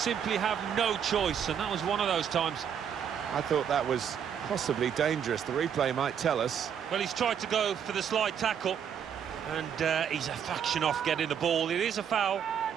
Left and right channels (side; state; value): left; quieter; 8.2 dB